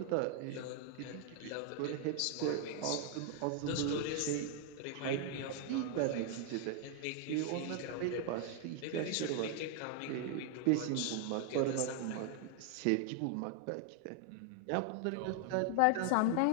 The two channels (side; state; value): both; different; correlation 0.00